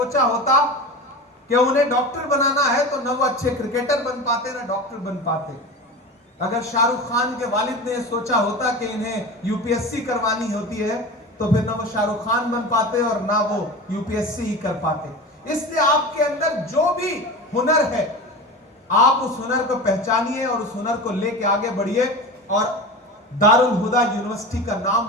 होता कि उन्हें डॉक्टर बनाना है, तो ना वो अच्छे क्रिकेटर बन पाते, ना डॉक्टर बन पाते। अगर शाहरुख खान के वालिद ने यह सोचा होता कि इन्हें UPSC करवानी होती है, तो फिर ना वो शाहरुख खान बन पाते और ना वो UPSC ही कर पाते। इसलिए आपके अंदर जो भी हुनर है, आप उस हुनर को पहचानिए और उस हुनर को लेके आगे बढ़िए और दारुल हुदा यूनिवर्सिटी का नाम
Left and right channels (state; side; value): normal; both; correlation 0.30